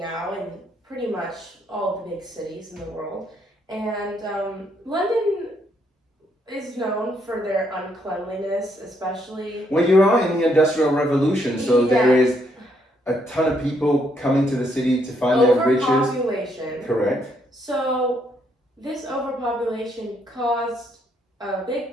in pretty much all of the big cities in the world. And London is known for their uncleanliness, especially. Well, you are in the Industrial Revolution, so there is a ton of people coming to the city to find their riches. Overpopulation. Correct. So this overpopulation caused a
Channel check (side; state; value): both; normal; correlation 0.73